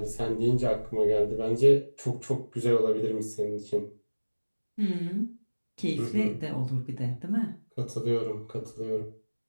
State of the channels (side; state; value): both; inverted; correlation -1.00